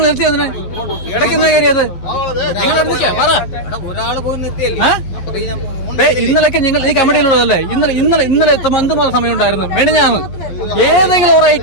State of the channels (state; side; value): late; right; 11 ms